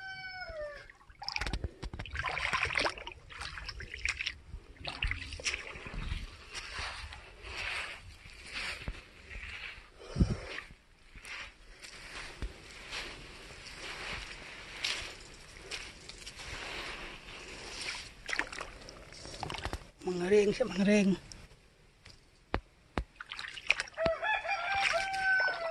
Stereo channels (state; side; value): identical; both; correlation 1.00